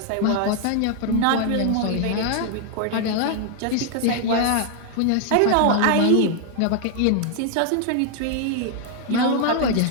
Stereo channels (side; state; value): both; different; correlation 0.00